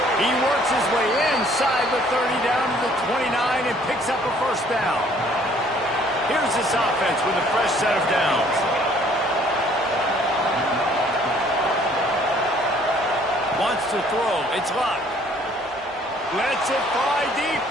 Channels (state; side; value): normal; both; correlation 0.59